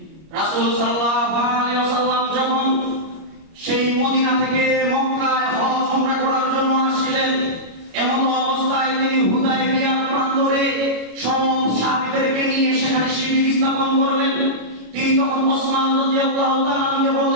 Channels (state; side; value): late; left; 25 ms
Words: রাসূল সাল্লাল্লাহু আলাইহি ওয়াসাল্লাম যখন সেই মদিনা থেকে মক্কায় হজ উমরা করার জন্য আসছিলেন, এমন অবস্থায় তিনি হুদায়বিয়া প্রান্তরে সব সাহাবীদেরকে নিয়ে সেখানে শিবির স্থাপন করলেন। তিনি তখন ওসমান রাদিয়াল্লাহু তাআলাকে